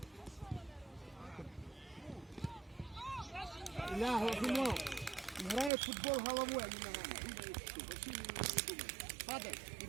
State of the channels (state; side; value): drops out; left; at 5.7 s